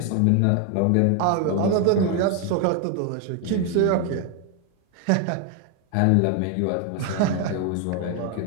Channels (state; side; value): different; both; correlation 0.01